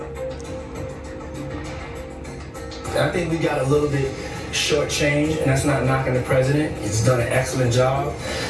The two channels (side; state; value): both; identical; correlation 1.00